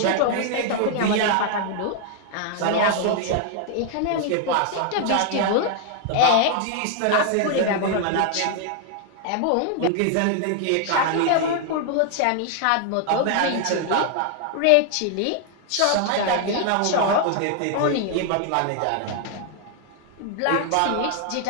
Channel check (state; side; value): different; both; correlation 0.00